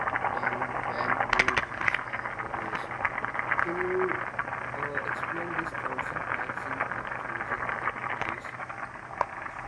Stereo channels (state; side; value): identical; both; correlation 1.00